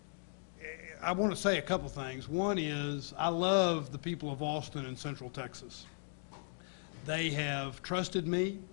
I want to say a couple things. One is I love the people of Austin and Central Texas. They have trusted me.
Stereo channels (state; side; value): silent; right; digital silence